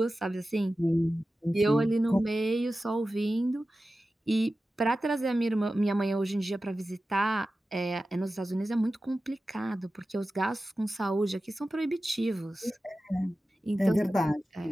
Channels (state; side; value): normal; both; correlation 0.94